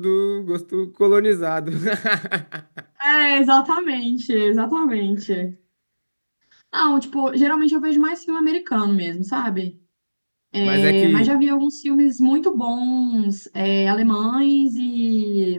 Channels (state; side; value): inverted; both; correlation -1.00